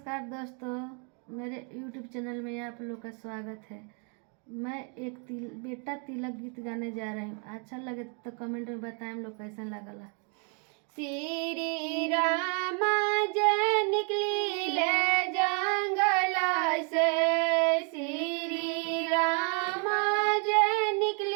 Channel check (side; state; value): left; quieter; 38.5 dB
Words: दोस्तों, मेरे YouTube चैनल में आप लोग का स्वागत है। मैं एक बेटा तिलक गीत गाने जा रही हूँ। अच्छा लगे तो कमेंट में बताएं हम लोग कैसा लगला। श्री राम जय निकली ले जंगल से, श्री राम जय